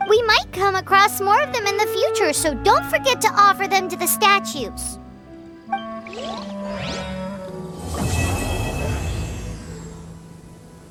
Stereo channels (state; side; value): identical; both; correlation 1.00